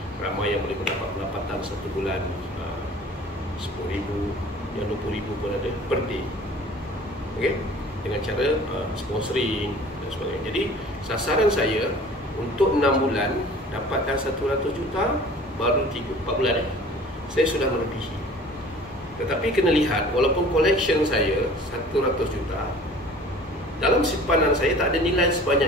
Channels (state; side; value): normal; both; correlation 0.46